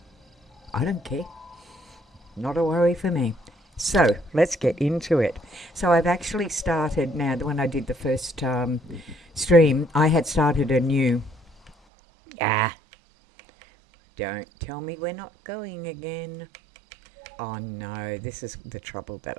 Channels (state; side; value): drops out; left; at 11.8 s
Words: I don't care. Not a worry for me. So let's get into it. So I've actually started now. When I did the first stream, I had started a new. Don't tell me we're not going again. Oh no, this is the trouble that